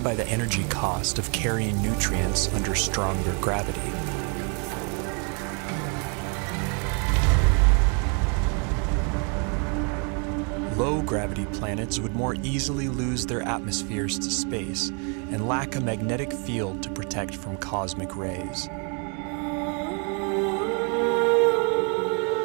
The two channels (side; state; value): left; quieter; 37.0 dB